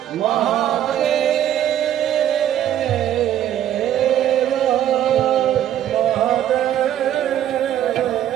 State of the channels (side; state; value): left; quieter; 11.1 dB